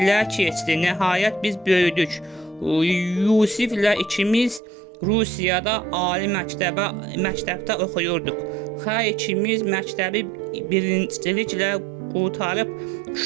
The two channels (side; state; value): left; drops out; at 4.6 s